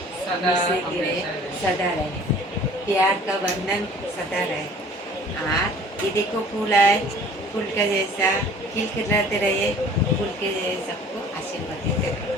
सदा से गिरे सदा रहे प्यार का बंधन सदा रहे ये देखो फूल है फूल का जैसा खिलखिलाते रहिए फूल के जैसे सबको आशीर्वाद देते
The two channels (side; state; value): both; normal; correlation 0.49